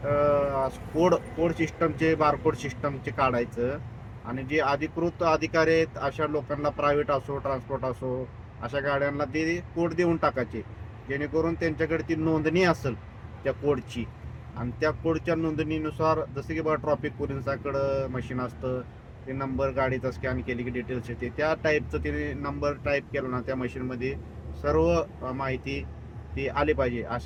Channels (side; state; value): both; identical; correlation 1.00